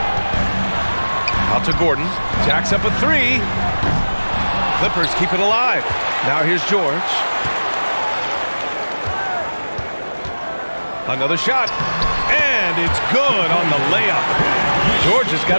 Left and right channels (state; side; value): inverted; both; correlation -1.00